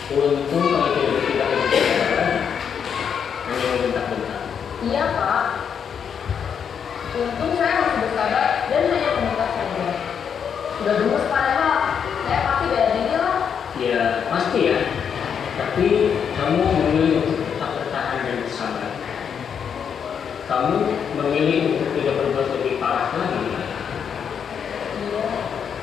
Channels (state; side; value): quieter; right; 7.4 dB